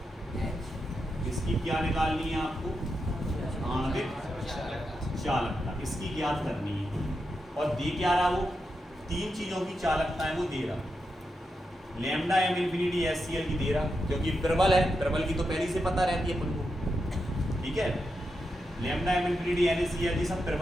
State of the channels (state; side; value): normal; both; correlation 0.86